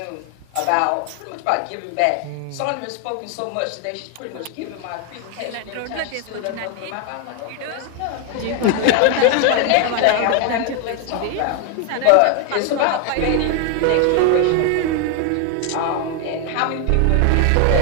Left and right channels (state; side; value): different; both; correlation 0.01